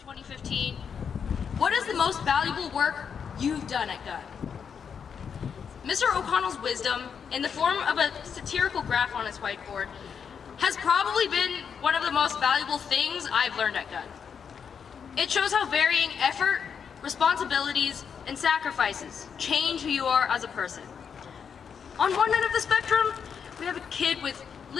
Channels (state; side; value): quieter; right; 6.9 dB